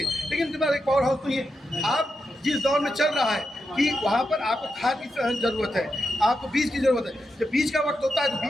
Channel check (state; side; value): normal; both; correlation 0.86